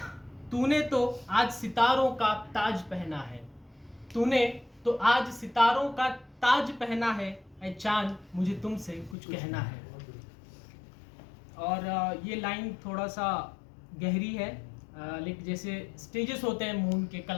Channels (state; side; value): drops out; right; at 9.2 s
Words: तूने तो आज सितारों का ताज पहना है, तूने तो आज सितारों का ताज पहना है, ऐ चांद मुझे तुमसे कुछ कहना है। और ये लाइन थोड़ा सा गहरी है, लेकिन जैसे स्टेजेस होते हैं मून के,